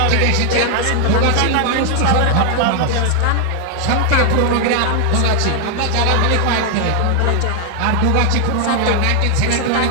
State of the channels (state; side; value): different; both; correlation 0.00